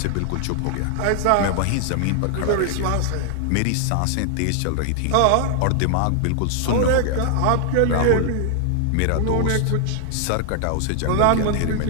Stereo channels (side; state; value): both; different; correlation 0.00